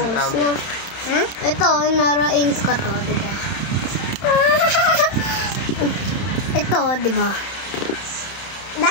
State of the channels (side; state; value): right; late; 31 ms